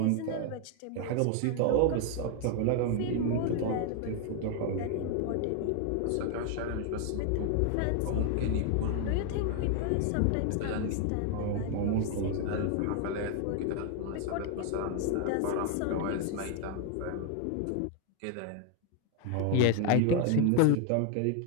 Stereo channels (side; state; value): both; different; correlation 0.01